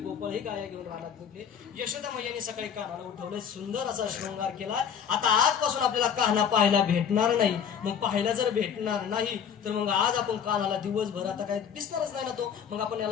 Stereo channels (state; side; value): quieter; right; 7.8 dB